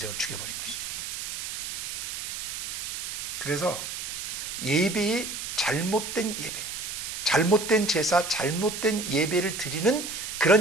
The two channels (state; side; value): noise; right; hiss, 5 dB below the sound